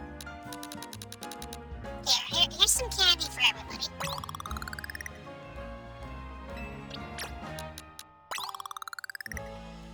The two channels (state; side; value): identical; both; correlation 1.00